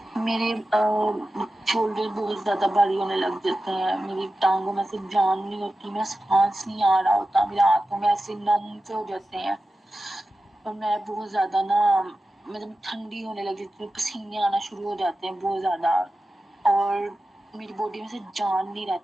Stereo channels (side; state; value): both; normal; correlation 0.93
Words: मेरे शोल्डर बहुत ज्यादा भारी होने लग जाते हैं, मेरी टांगों में से जान नहीं होती, मेरा सांस नहीं आ रहा होता, मेरे हाथों में ऐसे नम से हो जाते हैं, और मैं बहुत ज्यादा ना मतलब ठंडी होने लग जाती है, पसीने आना शुरू हो जाते हैं बहुत ज्यादा, और मेरी बॉडी में से जान नहीं